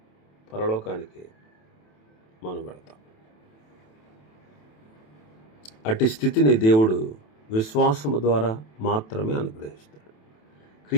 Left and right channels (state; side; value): late; right; 27 ms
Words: పరలోకానికి మనం వెళతాం. అట్టి స్థితిని దేవుడు విశ్వాసము ద్వారా మాత్రమే అనుగ్రహిస్తాడు.